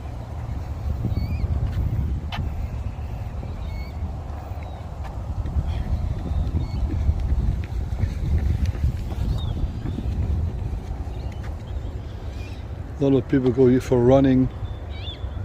a lot of people go here for running.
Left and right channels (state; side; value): identical; both; correlation 1.00